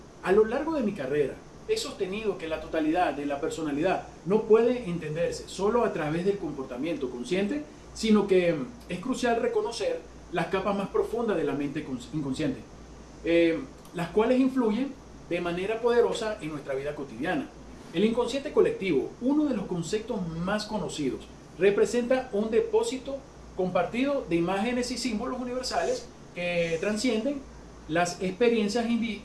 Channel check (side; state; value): both; identical; correlation 1.00